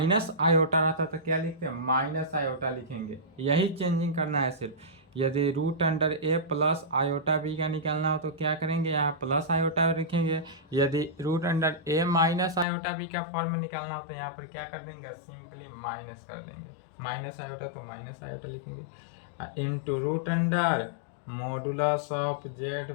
आयोटा रहता तो क्या लिखते हैं? माइनस आयोटा लिखेंगे। यही चेंजिंग करना है सिर्फ। यदि रूट अंडर ए प्लस आयोटा बी का निकालना हो तो क्या करेंगे? यहाँ प्लस आयोटा लिखेंगे। यदि root under A minus iota B का फॉर्म में निकालना हो तो यहाँ पर क्या कर देंगे? सिंपली माइनस कर देंगे। माइनस आयोटा तो माइनस आयोटा लिखेंगे into root under modulus of Z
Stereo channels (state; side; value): drops out; right; at 12.7 s